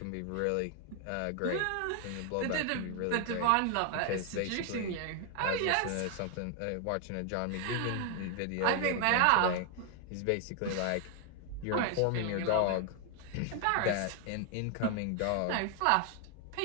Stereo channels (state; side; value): different; both; correlation 0.00